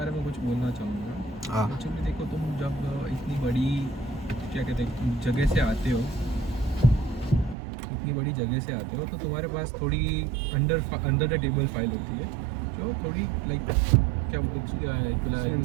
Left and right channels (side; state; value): left; drops out; at 7.6 s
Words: में कुछ बोलना चाहूँगा। हाँ। एक्चुअली देखो, तुम जब इतनी बड़ी क्या कहते हैं जगह से आते हो, इतनी बड़ी जगह से आते हो, तो तुम्हारे पास थोड़ी अंडर द टेबल फाइल होती है जो थोड़ी लाइक क्या